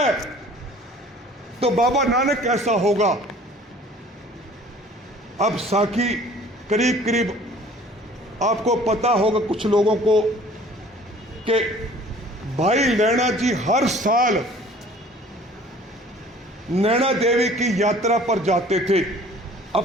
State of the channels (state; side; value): normal; both; correlation 0.51